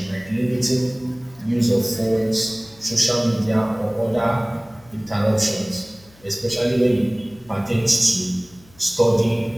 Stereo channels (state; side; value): noise; left; hum, 27 dB below the sound